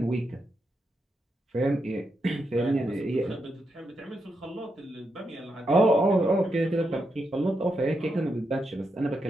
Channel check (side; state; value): both; normal; correlation 0.83